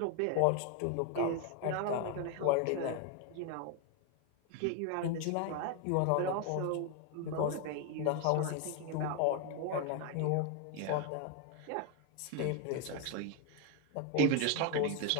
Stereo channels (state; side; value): different; both; correlation 0.01